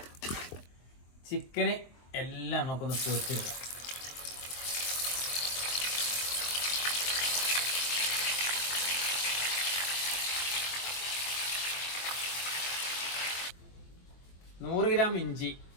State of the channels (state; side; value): late; right; 23 ms